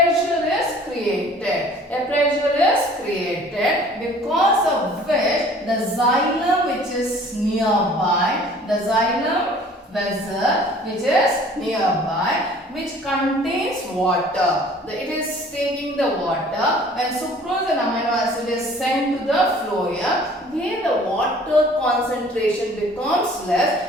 is created. A pressure is created because of which the xylem which is nearby, the xylem vessel which is nearby, which contains water. It is taking the water. When sucrose and amino acid is sent to the phloem, where the water concentration becomes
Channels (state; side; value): normal; both; correlation 0.51